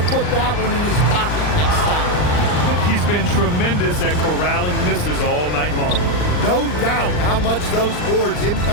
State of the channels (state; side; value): late; right; 39 ms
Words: put that one in his pocket next time. He's been tremendous at corralling misses all night long. No doubt how much those boards